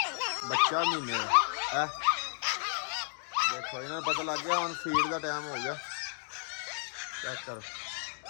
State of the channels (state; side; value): silent; right; 56 dB below the other